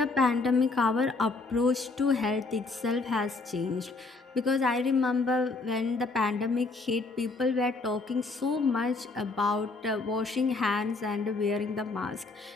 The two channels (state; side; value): quieter; right; 3.7 dB